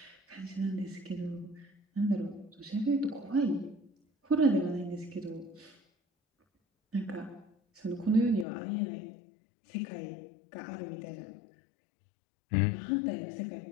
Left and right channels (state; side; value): drops out; right; at 8.5 s